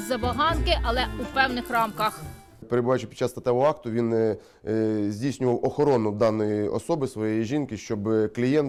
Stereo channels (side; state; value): both; identical; correlation 1.00